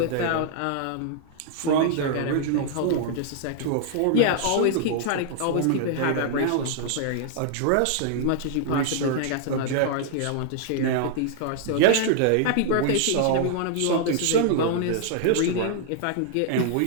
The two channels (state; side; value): different; both; correlation -0.01